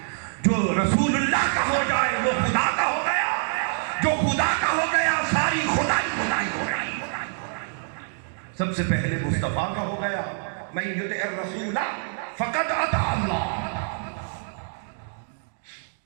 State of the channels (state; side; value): silent; left; digital silence